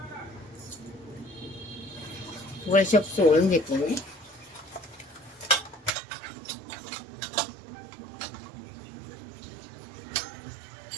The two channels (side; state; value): left; drops out; at 5.9 s